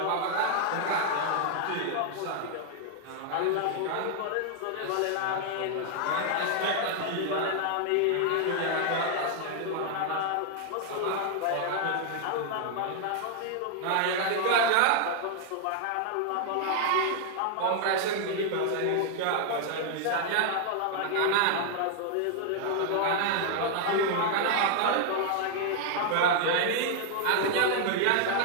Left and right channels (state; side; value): different; both; correlation 0.00